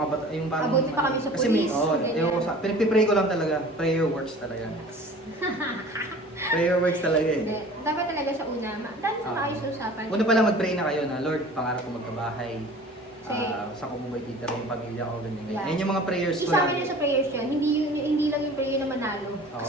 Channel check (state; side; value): normal; both; correlation 0.44